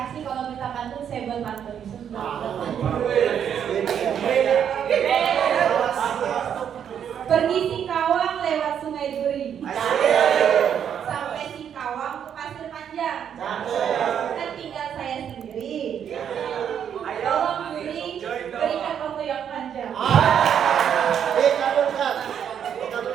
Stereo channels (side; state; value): left; quieter; 8.6 dB